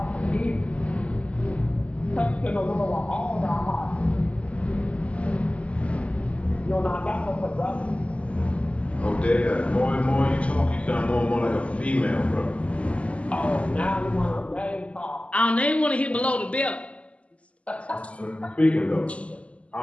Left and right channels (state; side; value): late; right; 0.062 ms